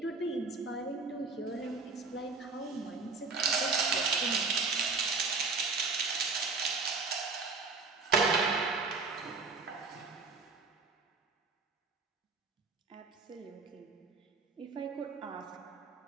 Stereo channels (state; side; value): quieter; left; 4.3 dB